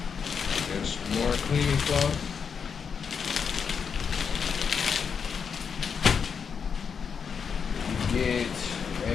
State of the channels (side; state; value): right; quieter; 6.5 dB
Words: There's more cleaning cloth.